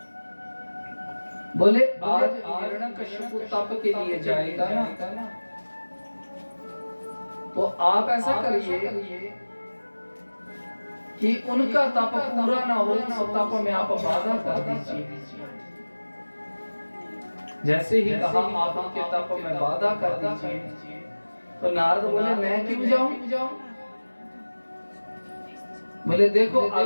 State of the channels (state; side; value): inverted; both; correlation -1.00